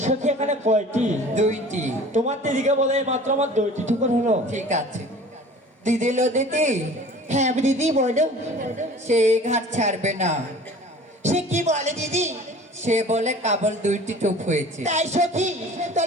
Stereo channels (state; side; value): normal; both; correlation 0.45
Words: সখী এখানে কয়টি? দুইটি। তোমার দিদিকে বলে মাত্র আমার দুইটি ঠুকুর হলো। ঠিক আছে দিদি। লো দিদি। হ্যাঁ দিদি বলো। সে এই ঘাট ছাড়বে না। সে কি বলে দিদি? সে বলে কেবল দুইটি টুপ হয়েছে। তাই সখী